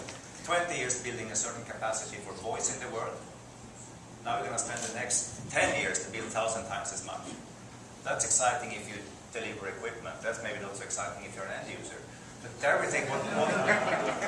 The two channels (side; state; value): both; identical; correlation 1.00